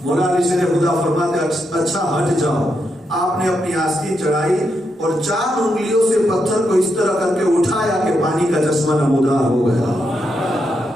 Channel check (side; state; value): both; normal; correlation 0.82